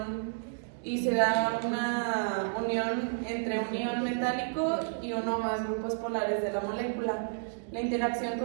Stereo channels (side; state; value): left; silent; digital silence